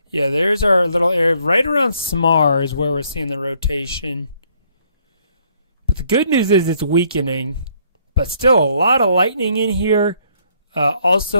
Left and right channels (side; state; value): both; inverted; correlation -0.67